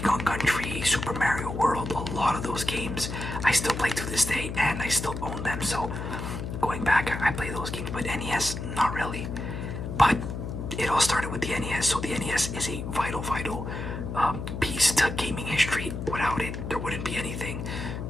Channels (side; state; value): left; noise; hum, 6 dB below the sound